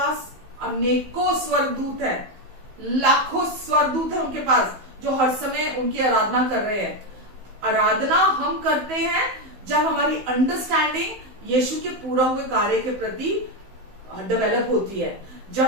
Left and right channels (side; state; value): left; late; 16 ms